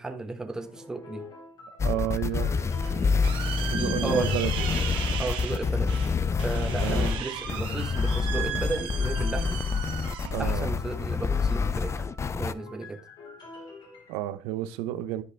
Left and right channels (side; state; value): both; normal; correlation 0.71